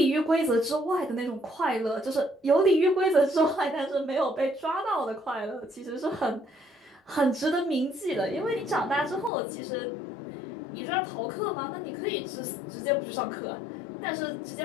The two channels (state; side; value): drops out; right; at 9.3 s